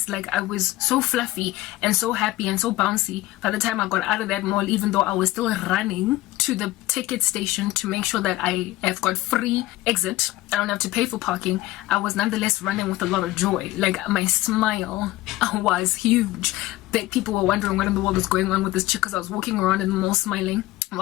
Like, I was so fluffy and so happy and so bouncy by the time I got out of that mall, even though I was still running to the ticket station to make sure that I have got free exit. I don't have to pay for parking. I was nonetheless running with a lot of joy. Like, my smile was huge. That people were wondering what in the world was going on with this chick, because I was walking around in the mall smiling.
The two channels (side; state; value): right; quieter; 17.2 dB